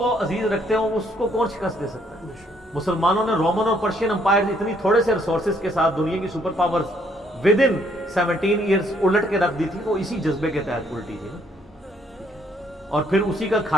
عزیز رکھتے ہوں اس کو کون شکست دے سکتا ہے؟ مسلمانوں نے رومن اور پرشین امپائر اتنی تھوڑے سے ریسورسز کے ساتھ دنیا کی super powers with in 17 years الٹ کے رکھ دی تھی. وہ اسی جذبے کے تحت الٹی تھی نا, اور پھر اسی کا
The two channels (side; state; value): both; normal; correlation 0.68